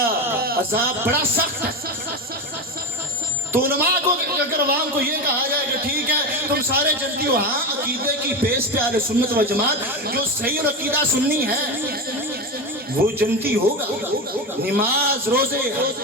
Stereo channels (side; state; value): both; normal; correlation 0.19